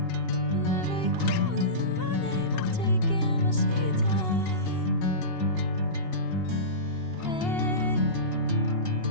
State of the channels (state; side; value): late; right; 2.8 ms